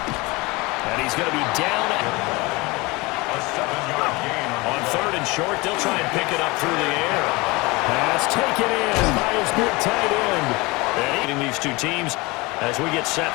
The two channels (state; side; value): quieter; right; 23.9 dB